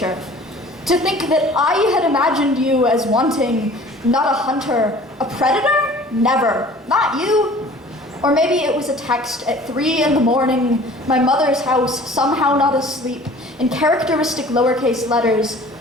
To think that I had imagined you as wanting, not a hunter, a predator? Never. Not you. Or maybe it was a text at 3 in the morning, my mother's house, somehow not asleep, in characteristic lowercase letters.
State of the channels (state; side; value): normal; both; correlation 0.47